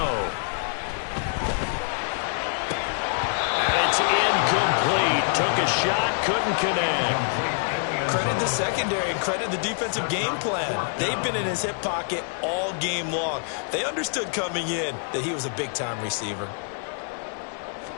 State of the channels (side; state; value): right; silent; 61 dB below the other